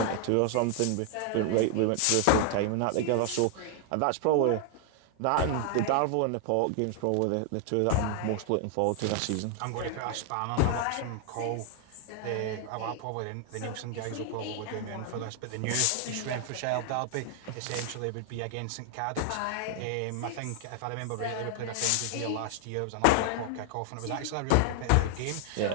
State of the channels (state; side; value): different; both; correlation 0.00